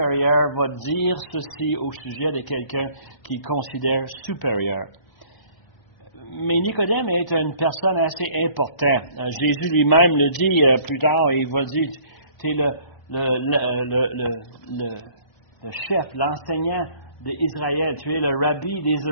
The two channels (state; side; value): late; right; 1.0 ms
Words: va dire ceci au sujet de quelqu'un qu'il considère supérieur. Mais Nicodème est une personne assez importante. Jésus lui-même le dit plus tard, il va dire, tu es le chef, l'enseignant d'Israël, tu es le rabbi